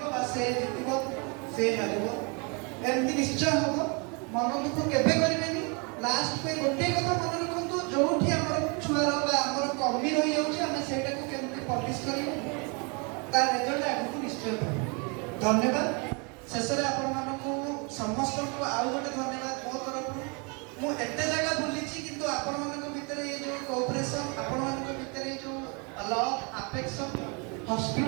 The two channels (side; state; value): left; quieter; 33.0 dB